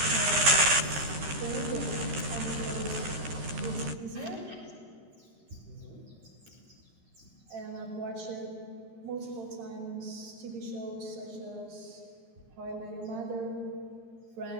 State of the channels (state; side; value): late; left; 13 ms